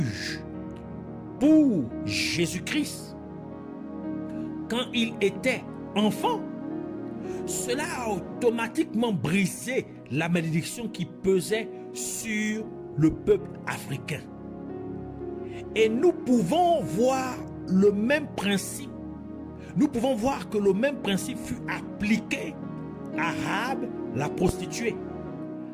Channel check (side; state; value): both; identical; correlation 1.00